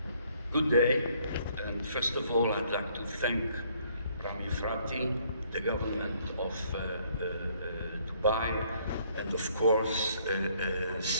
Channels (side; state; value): both; inverted; correlation -0.65